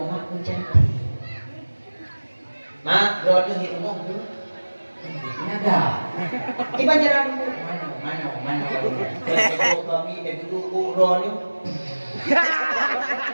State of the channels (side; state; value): both; inverted; correlation -1.00